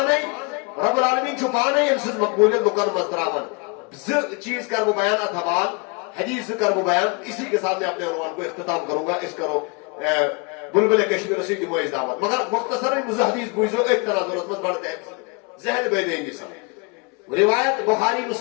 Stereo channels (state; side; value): quieter; right; 31.7 dB